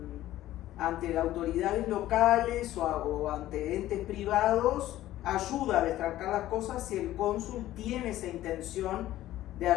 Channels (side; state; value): right; quieter; 14.4 dB